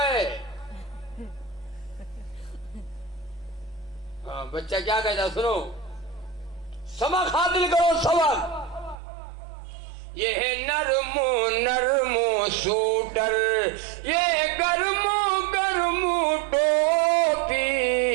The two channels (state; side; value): drops out; left; at 9.0 s